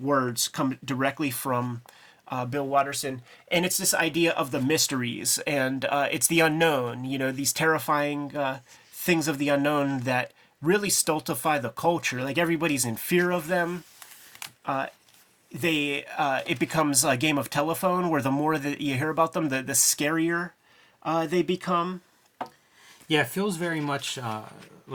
come directly from Bill Watterson. And it's this idea of the mysteries. And it's the unknown, you know, these terrifying things of the unknown that really stultify the culture. Like everybody's in fear of them. It becomes a game of telephone where the more that you hear about them, the scarier they become. Yeah, it feels very much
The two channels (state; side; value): identical; both; correlation 1.00